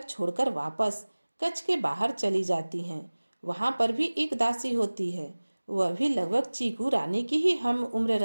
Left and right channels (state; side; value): inverted; both; correlation -1.00